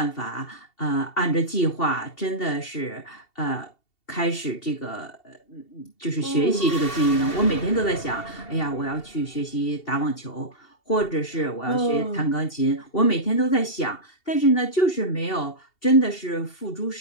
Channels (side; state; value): right; late; 2.7 ms